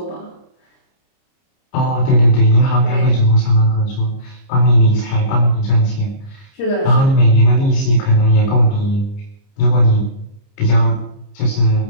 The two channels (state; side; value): late; right; 30 ms